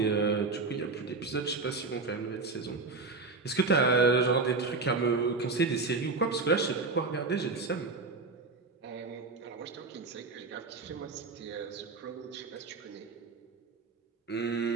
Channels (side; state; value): left; quieter; 4.0 dB